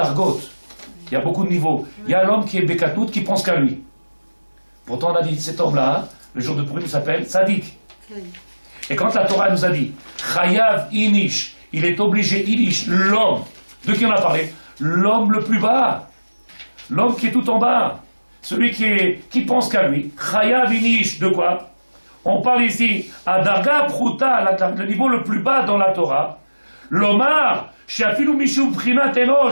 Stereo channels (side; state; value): both; inverted; correlation -1.00